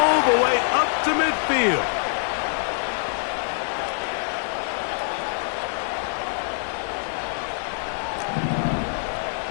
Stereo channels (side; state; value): right; silent; digital silence